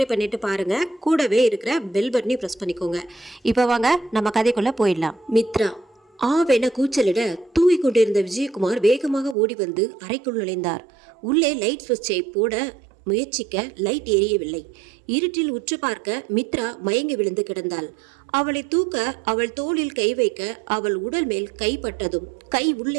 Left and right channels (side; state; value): left; drops out; at 9.3 s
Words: பண்ணிட்டு பாருங்கள். கூடவே இருக்கிற பெல் பட்டனையும் ப்ரெஸ் பண்ணிக்கோங்க. இப்போ வாங்க நம்ம கதைக்குள்ளே போயிடலாம். மித்ரா ஆவென கூச்சலிட தூங்கி கொண்டிருந்த விஜயகுமார் வேகமாக ஓடி வந்து அறைக்குள் நுழைந்தார். உள்ளே லைட் சுவிட்சை போட முயற்சிக்க லைட் எரியவில்லை. இருட்டில் உற்று பார்க்க மித்ரா மயங்கி விழுந்து கிடந்தாள். அவளை தூக்க அவள் தோளில் கை வைக்க அவள் உடல் மேல் கைப்பட்டதும் கை